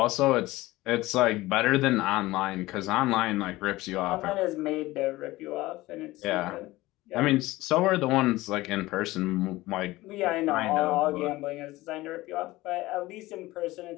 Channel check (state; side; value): quieter; right; 18.7 dB